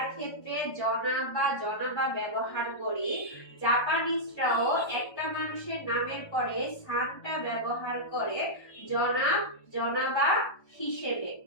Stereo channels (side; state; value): right; late; 1.2 ms